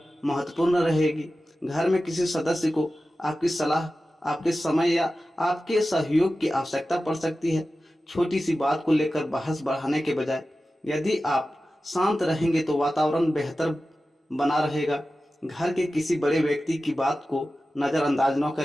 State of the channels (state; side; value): normal; both; correlation 0.94